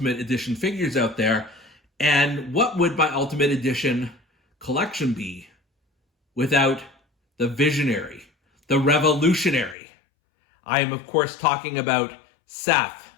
Edition figures out there. And what would my Ultimate Edition collection be without the visionary, the revolutionary? I am, of course, talking about Seth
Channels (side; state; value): right; drops out; at 9.8 s